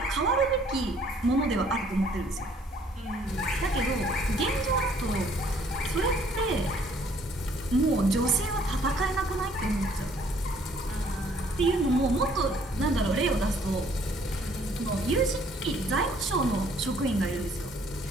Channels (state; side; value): normal; both; correlation 0.61